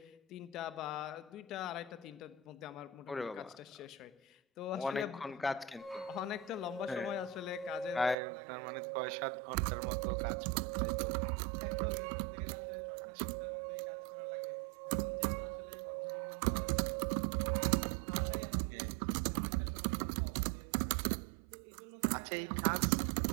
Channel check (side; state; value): left; drops out; at 8.2 s